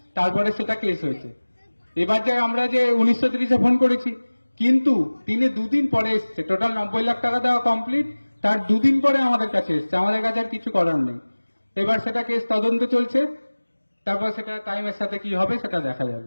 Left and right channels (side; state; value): both; inverted; correlation -1.00